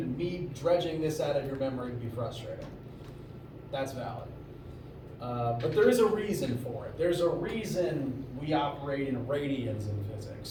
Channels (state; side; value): identical; both; correlation 1.00